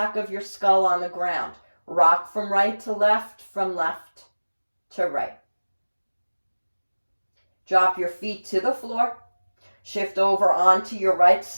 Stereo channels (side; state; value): both; inverted; correlation -1.00